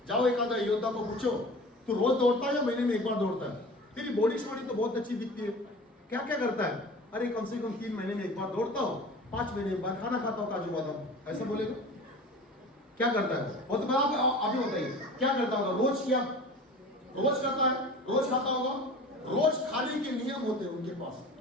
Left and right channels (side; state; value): both; normal; correlation 0.38